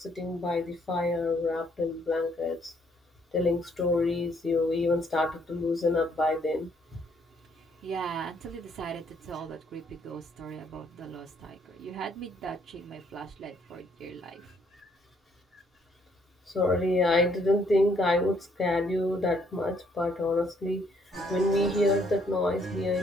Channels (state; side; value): normal; both; correlation 0.68